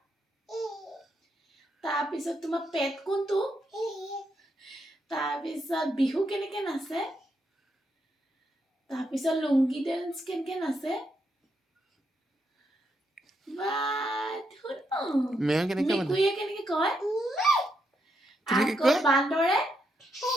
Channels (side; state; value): both; normal; correlation 0.80